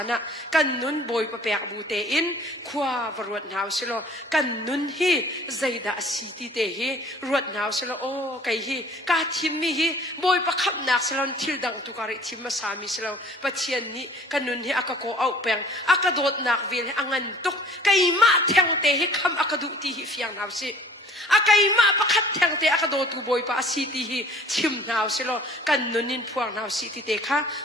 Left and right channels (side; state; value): both; normal; correlation 0.51